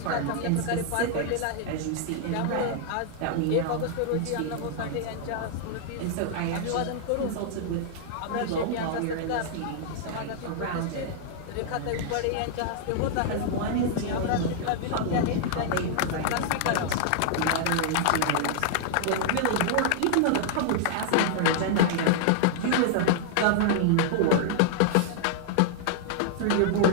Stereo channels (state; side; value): different; both; correlation -0.01